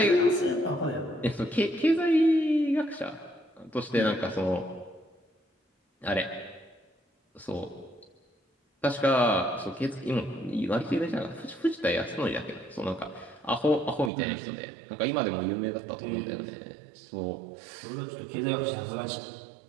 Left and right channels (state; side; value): drops out; left; at 14.1 s